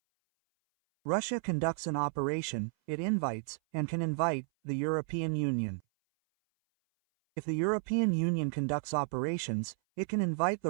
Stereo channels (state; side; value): silent; left; 56 dB below the other